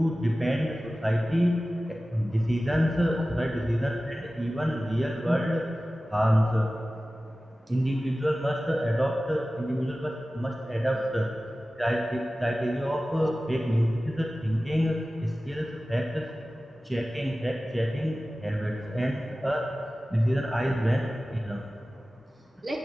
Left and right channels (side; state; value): both; normal; correlation 0.96